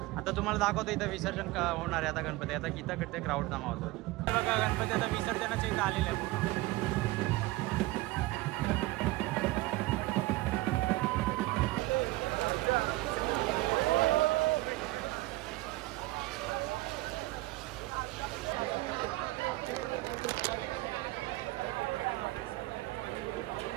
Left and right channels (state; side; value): quieter; left; 19.5 dB